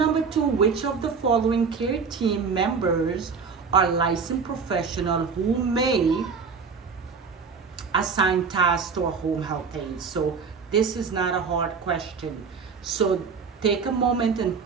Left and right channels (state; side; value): quieter; left; 5.4 dB